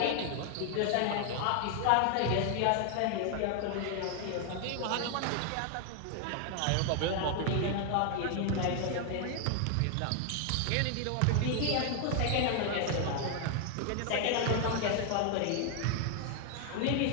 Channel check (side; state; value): both; different; correlation 0.00